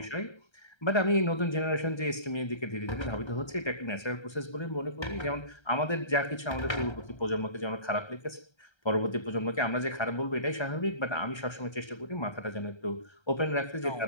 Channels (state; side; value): late; right; 1.3 ms